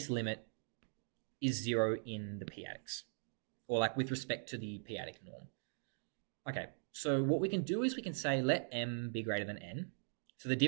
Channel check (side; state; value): left; silent; digital silence